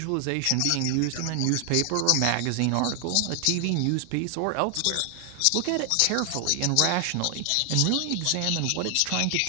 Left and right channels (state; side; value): different; both; correlation 0.00